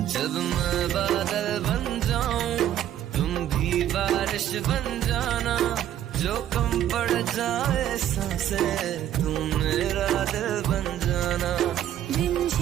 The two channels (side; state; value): left; quieter; 11.3 dB